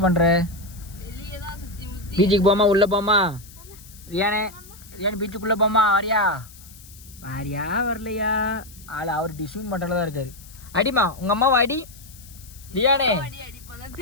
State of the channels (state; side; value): noise; left; hiss, 21 dB below the sound